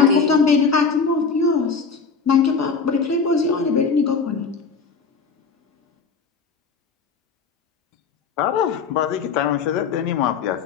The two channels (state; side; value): quieter; right; 5.2 dB